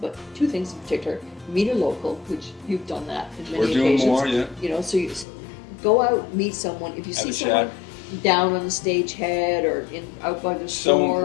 2 things in particular. Meet a local, which you've done that in many We're doing occasions. more, yeah. You know, so you go out, meet someone. If you Have see a someone chat. down on the stage head or out by the So store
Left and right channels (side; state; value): right; drops out; at 5.2 s